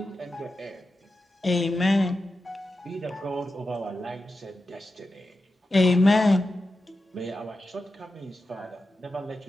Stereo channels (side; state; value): both; normal; correlation 0.91